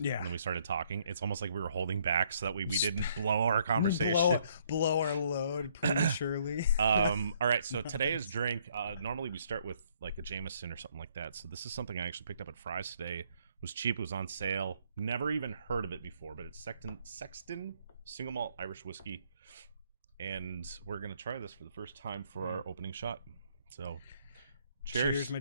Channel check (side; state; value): both; inverted; correlation -0.67